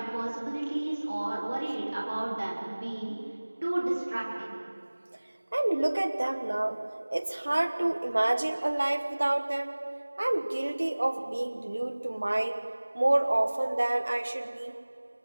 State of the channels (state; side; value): inverted; both; correlation -1.00